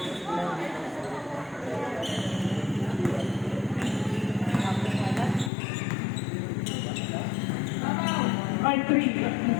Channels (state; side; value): drops out; right; at 5.5 s